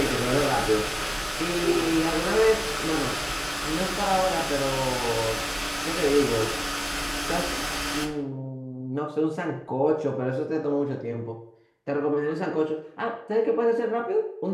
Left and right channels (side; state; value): both; identical; correlation 1.00